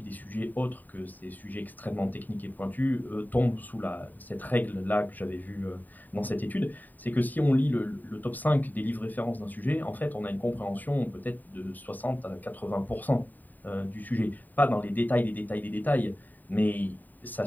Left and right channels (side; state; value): right; late; 0.087 ms